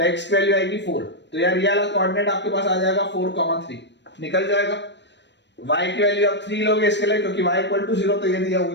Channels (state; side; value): late; right; 0.51 ms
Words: x की वैल्यू आएगी 4। तो यार ये वाला कोऑर्डिनेट आपके पास आ जाएगा 4, 3 निकल जाएगा। y की वैल्यू आप 3 लोगे इसके लिए, क्योंकि y = 0 तो ये दिया हुआ